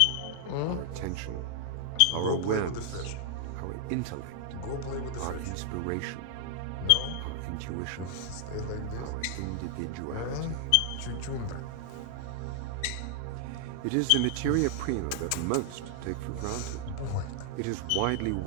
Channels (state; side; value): different; both; correlation 0.00